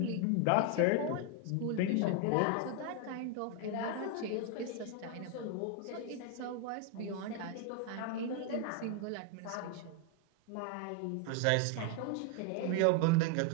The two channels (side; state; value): both; different; correlation 0.01